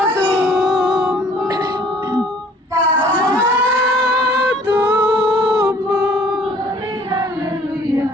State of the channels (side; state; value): both; normal; correlation 0.55